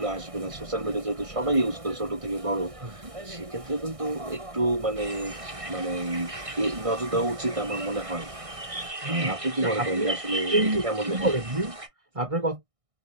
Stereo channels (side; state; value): left; late; 1.6 ms